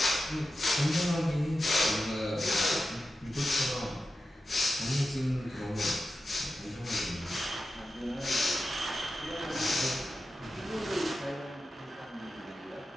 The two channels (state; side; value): normal; both; correlation 0.91